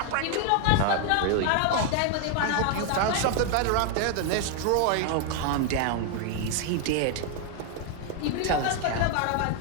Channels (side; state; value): both; different; correlation 0.01